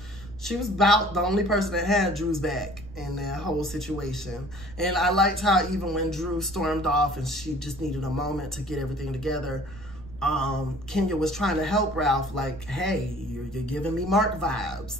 she was about the only person that had Drew's back in that whole situation. And I liked how even when Drew stormed off and she just needed a moment to get everything together, Kenya was trying to help Ralph, like, hey, you're giving me Mark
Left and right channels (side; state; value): right; noise; rumble, 16 dB below the sound